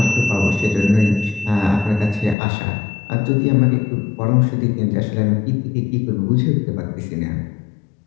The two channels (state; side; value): drops out; right; at 2.4 s